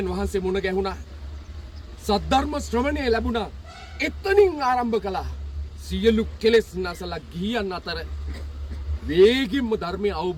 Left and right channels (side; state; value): both; identical; correlation 1.00